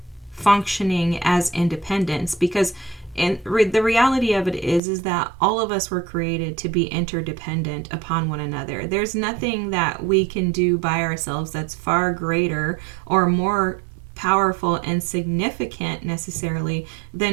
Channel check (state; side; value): drops out; left; at 4.8 s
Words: functioning as independents because the reality of it is that all of us were created to be interdependent upon one another. There's nothing that we can do by ourselves that's far greater or more powerful and significant necessarily